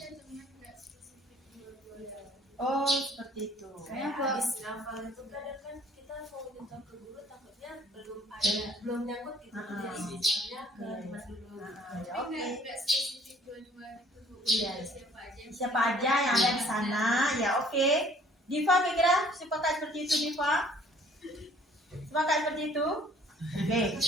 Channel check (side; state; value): both; normal; correlation 0.57